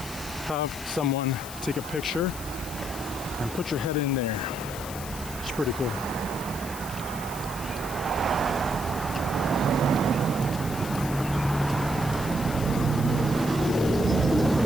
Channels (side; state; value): left; noise; hiss, 12 dB below the sound